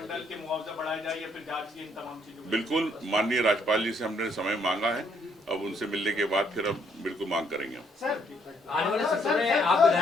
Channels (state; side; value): normal; both; correlation 0.69